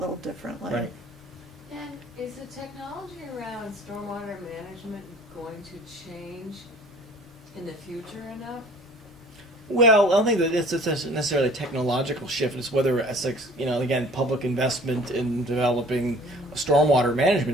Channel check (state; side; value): normal; both; correlation 0.50